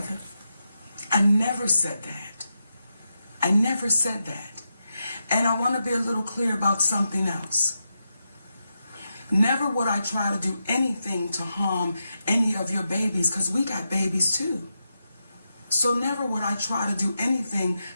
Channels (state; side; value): inverted; both; correlation -0.87